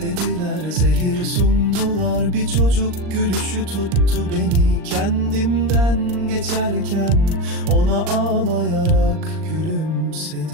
zehir sundular, bir çocuk gülüşü tuttu beni. Kendimden geçerken ona ağlayarak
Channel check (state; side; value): late; left; 39 ms